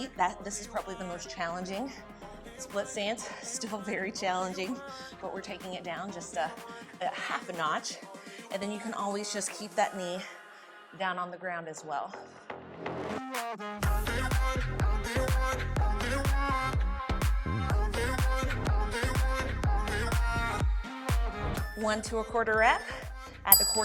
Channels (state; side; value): identical; both; correlation 1.00